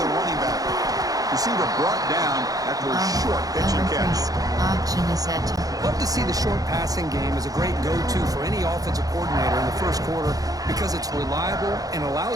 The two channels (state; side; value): late; left; 0.18 ms